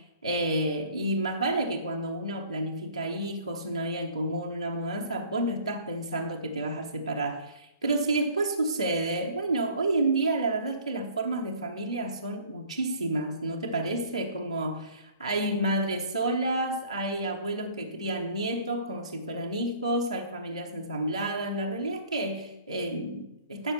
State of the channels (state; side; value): inverted; both; correlation -0.52